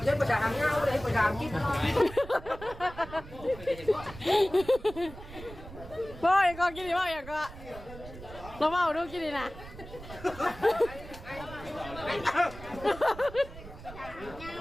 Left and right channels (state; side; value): noise; right; rumble, 15 dB below the sound